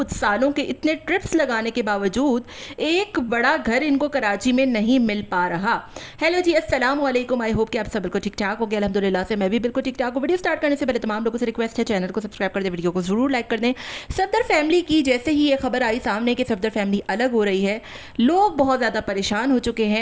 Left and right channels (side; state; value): both; identical; correlation 1.00